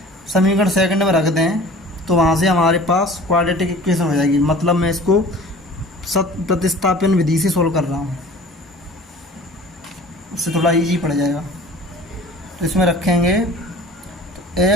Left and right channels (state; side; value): normal; both; correlation 0.45